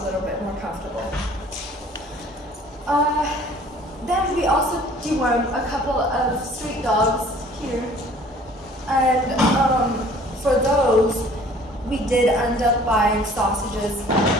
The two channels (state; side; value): normal; both; correlation 0.52